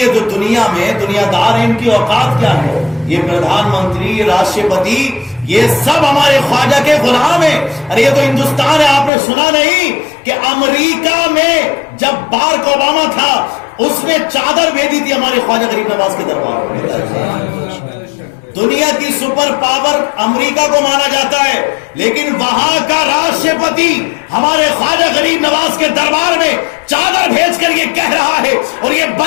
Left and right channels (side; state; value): right; drops out; at 9.1 s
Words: جو دنیا میں دنیا دار ہیں، ان کی اوقات کیا ہے؟ یہ پردھان منتری، یہ راشٹرپتی، یہ سب ہمارے خواجہ کے غلام ہیں. ارے یہ تو ہندوستان ہے. آپ نے سنا نہیں کہ امریکہ میں جب بارک اوباما تھا اس نے چادر بھیجی تھی ہمارے خواجہ غریب نواز کے دربار میں. دنیا کی سپر پاور امریکہ کو مانا جاتا ہے، لیکن وہاں کا راشٹرپتی ہمارے خواجہ غریب نواز کے دربار میں چادر بھیج کر یہ کہہ رہا ہے اور یہ